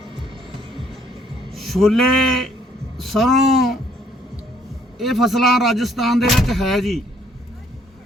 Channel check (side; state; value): both; normal; correlation 0.65